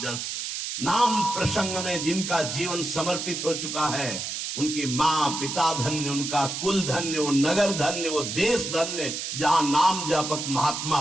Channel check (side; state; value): right; noise; hiss, 5 dB below the sound